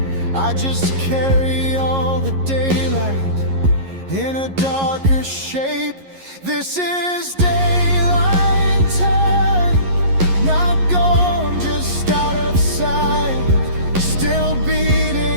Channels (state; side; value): late; left; 11 ms